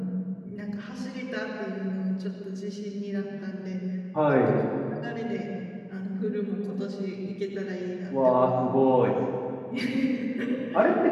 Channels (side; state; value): both; identical; correlation 1.00